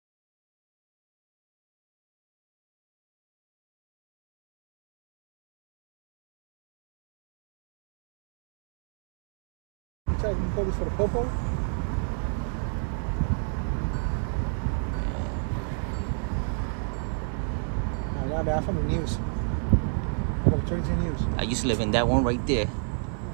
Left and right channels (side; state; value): left; silent; 55 dB below the other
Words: For the popo? No, man, I'm from the news. I got 22 news. I used to live in that one right there.